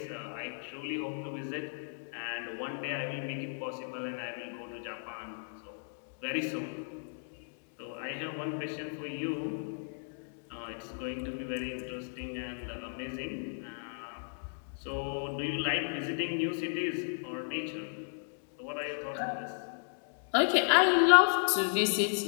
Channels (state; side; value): silent; right; digital silence